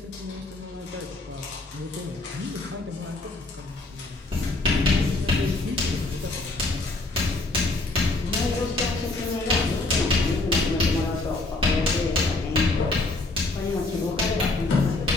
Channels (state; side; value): quieter; right; 3.1 dB